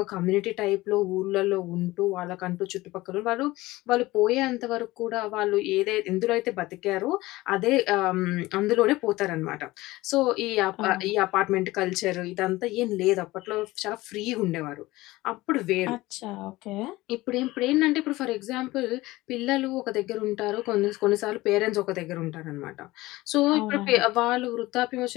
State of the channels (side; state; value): right; quieter; 19.0 dB